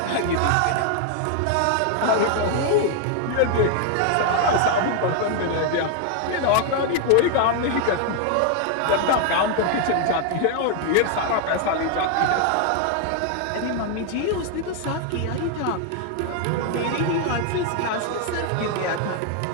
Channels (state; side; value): different; both; correlation 0.00